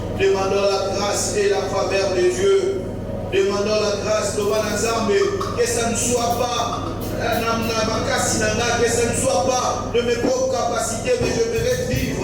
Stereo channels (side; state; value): both; identical; correlation 1.00